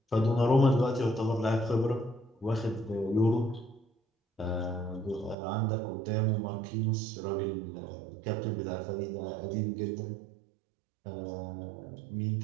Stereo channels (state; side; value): drops out; left; at 5.4 s